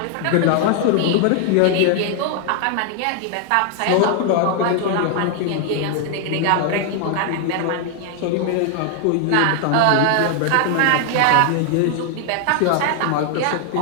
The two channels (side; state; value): both; different; correlation 0.00